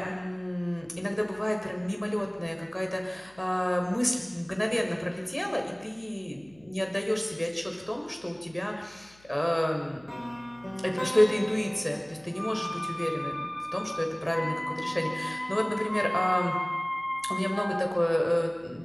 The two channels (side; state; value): left; noise; hum, 28 dB below the sound